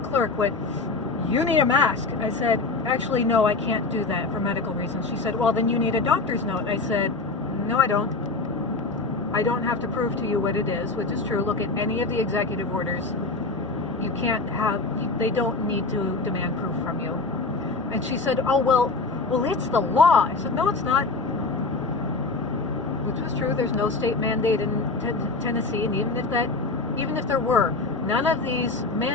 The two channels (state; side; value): quieter; right; 3.7 dB